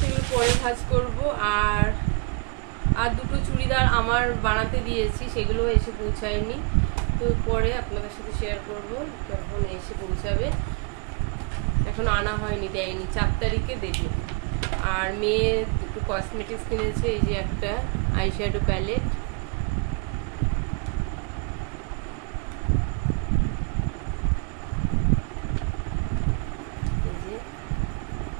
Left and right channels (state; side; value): quieter; left; 34.1 dB